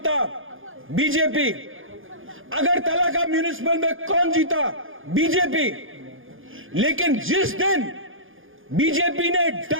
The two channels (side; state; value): left; late; 0.59 ms